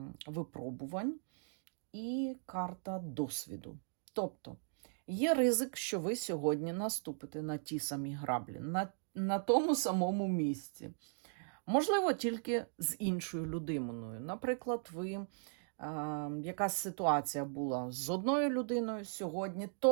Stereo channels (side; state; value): left; silent; digital silence